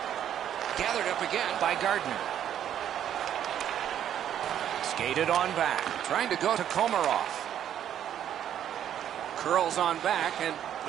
Gathered up again by Gardner. Skated on back. Trying to go to Komarov. Curls on back and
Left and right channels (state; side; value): quieter; left; 10.2 dB